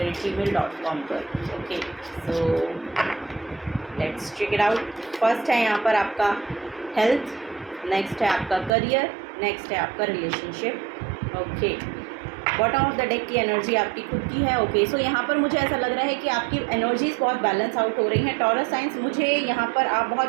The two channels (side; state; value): left; drops out; at 8.7 s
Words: पर। Okay, so let's check it out. First है यहाँ पर आपका हेल्थ, नेक्स्ट है आपका करियर, नेक्स्ट है आपका relationship. Okay, bottom of the deck की एनर्जी आपकी खुद की है। ओके, सो यहाँ पर मुझे ऐसा लग रहा है कि आपकी एनर्जीज बहुत बैलेंस आउट हो रही हैं। टॉरस साइंस, मुझे यहाँ पर आप